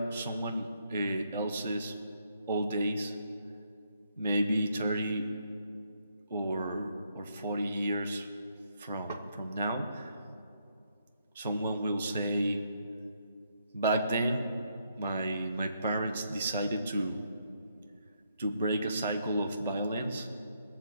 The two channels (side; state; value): both; inverted; correlation -0.75